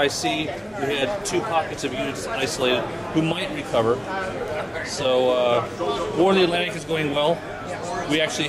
We had 2 pockets of units isolated who might recover. So War of the Atlantic is going well. We actually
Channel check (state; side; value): identical; both; correlation 1.00